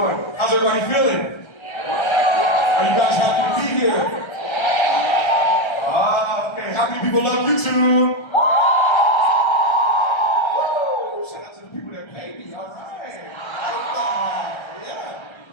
How's everybody feeling? Are you guys happy to be here? Okay. How many people love YouTube? Woo! Shout out to the people that pay me. All right. Yeah.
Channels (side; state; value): right; late; 1.3 ms